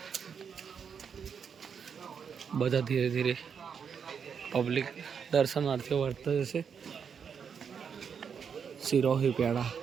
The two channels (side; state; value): left; quieter; 6.8 dB